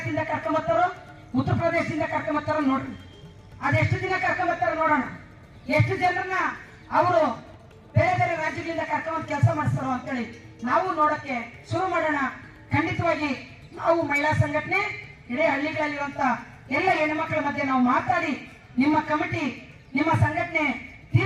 ಕರ್ಕೊಂಬರ್ತಾರೋ, ಉತ್ತರ ಪ್ರದೇಶದಿಂದ ಕರ್ಕೊಂಬರ್ತಾರೋ ನೋಡ್ರಿ. ಅದೆಷ್ಟು ದಿನ ಕರ್ಕೊಂಬರ್ತಾರೋ ನೋಡೋಣ. ಎಷ್ಟು ಜನರನ್ನ ಅವರು ಬೇರೆ ಬೇರೆ ರಾಜ್ಯಗಳಿಂದ ಕರ್ಕೊಂಡ್ ಕೆಲಸ ಮಾಡಿಸ್ತಾರೋ ಅಂತೇಳಿ ನಾವು ನೋಡಕ್ಕೆ ಶುರು ಮಾಡೋಣ. ಖಂಡಿತವಾಗಿ ನಾವು ಮಹಿಳಾ ಸಂಘಟನೆ ಇಡೀ ಹಳ್ಳಿಗಳಲ್ಲಿರುವಂತ ಎಲ್ಲ ಹೆಣ್ಮಕ್ಳ ಮಧ್ಯೆ ನಾವು ಮಾತಾಡಿ ನಿಮ್ಮ ಕಮಿಟಿ, ನಿಮ್ಮ ಸಂಘಟನೆ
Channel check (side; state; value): both; identical; correlation 1.00